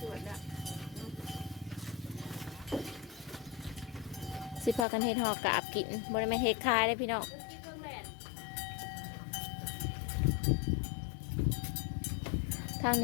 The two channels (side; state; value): right; drops out; at 4.9 s